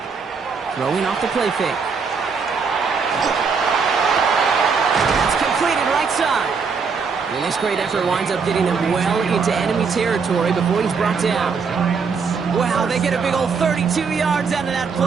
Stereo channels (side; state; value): left; quieter; 5.4 dB